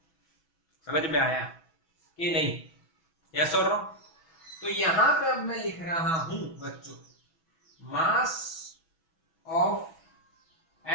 समझ में आया कि नहीं? यस और नो? तो यहां पे अब मैं लिख रहा हूं बच्चों, मास ऑफ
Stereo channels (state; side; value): late; right; 6.1 ms